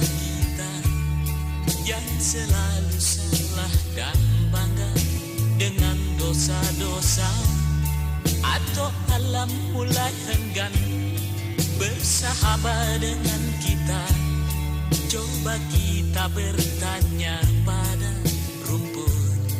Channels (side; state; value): both; identical; correlation 1.00